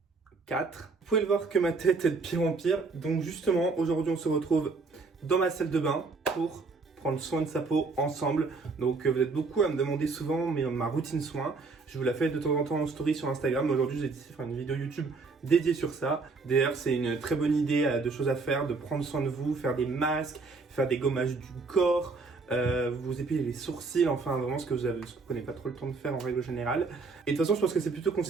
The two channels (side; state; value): left; quieter; 4.2 dB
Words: 4. Vous pouvez le voir que ma tête est de pire en pire. Donc justement, aujourd'hui on se retrouve dans ma salle de bain pour prendre soin de sa peau ensemble. Donc vous êtes beaucoup à me demander souvent ma routine soin. Je vous la fais de temps en temps en story sur Instagram. Aujourd'hui j'ai décidé de faire une vidéo YouTube dédiée sur ça. D'ailleurs c'est une très bonne idée de choses à faire, de prendre soin de vous, faire des masques, faire des gommages du corps. Vous épiler les sourcils, enfin vraiment ce que vous prenez pas trop le temps de faire en règle générale. Et de toute façon je pense que c'est plutôt